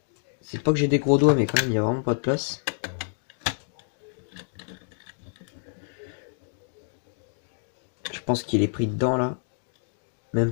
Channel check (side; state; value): right; silent; digital silence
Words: C'est pas que j'ai des gros doigts, mais quand même il n'y a vraiment pas de place. Je pense qu'il est pris dedans là. Même